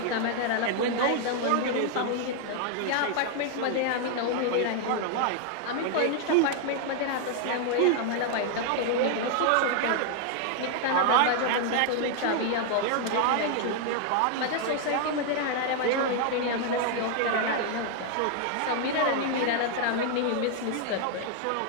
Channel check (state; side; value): different; both; correlation 0.00